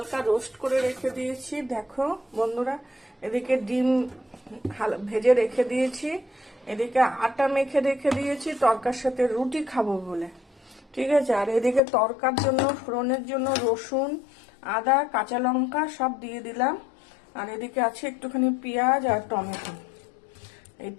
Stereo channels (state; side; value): drops out; right; at 11.8 s